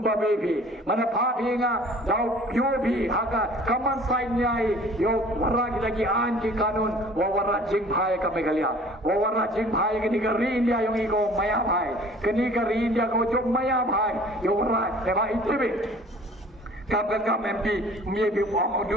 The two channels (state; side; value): normal; both; correlation 0.49